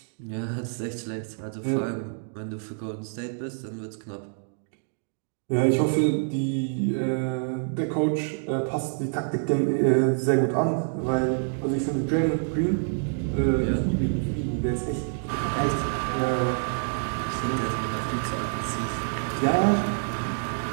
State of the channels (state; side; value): silent; left; digital silence